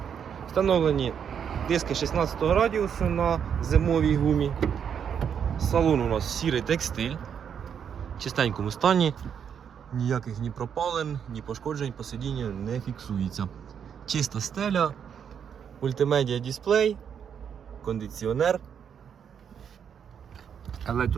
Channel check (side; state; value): left; quieter; 7.8 dB